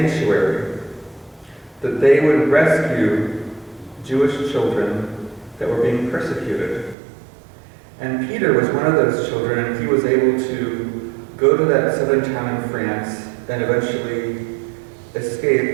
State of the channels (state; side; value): drops out; left; at 7.0 s